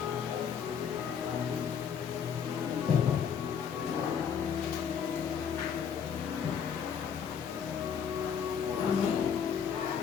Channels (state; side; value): quieter; right; 7.4 dB